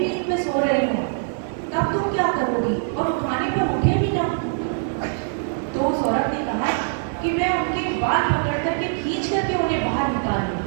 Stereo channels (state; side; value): silent; left; digital silence